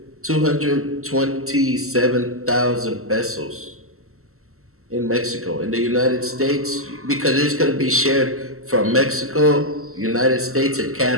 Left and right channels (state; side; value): late; left; 0.63 ms